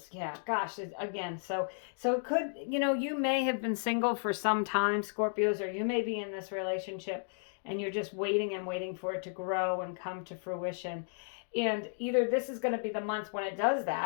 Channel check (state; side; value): silent; right; digital silence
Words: Yeah, gosh, again, so it could, you know, you may have been single for some time, Scorpios, or you may be in this relationship and you're just waiting and waiting for it to grow and come to fruition. And either this is going to be the month when it does